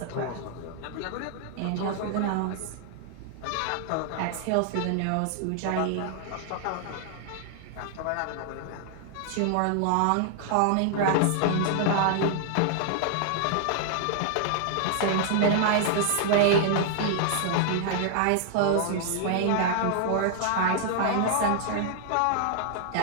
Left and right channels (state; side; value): different; both; correlation -0.01